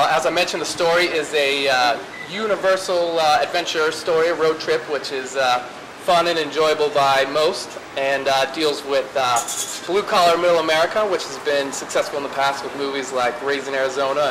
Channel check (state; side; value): identical; both; correlation 1.00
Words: I mentioned, the story is a universal adventure story, road trip, which is fun and enjoyable by most, and deals with blue-collar middle America, which has been successful in the past with movies like Raising Arizona